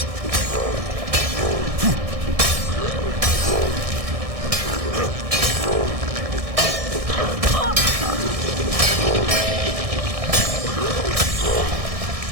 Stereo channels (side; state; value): left; late; 1.6 ms